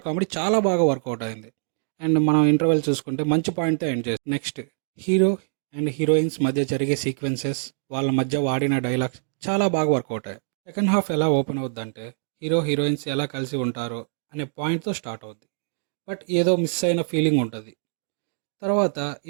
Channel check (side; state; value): left; silent; digital silence